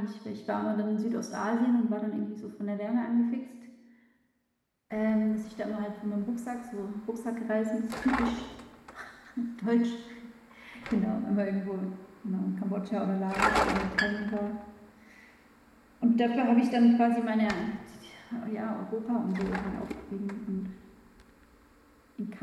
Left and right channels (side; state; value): both; identical; correlation 1.00